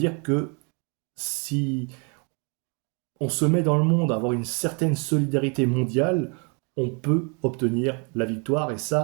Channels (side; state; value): left; quieter; 35.2 dB